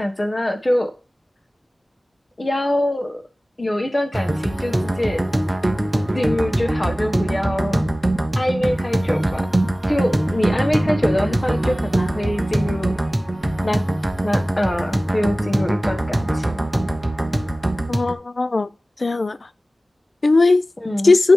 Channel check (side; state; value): both; normal; correlation 0.97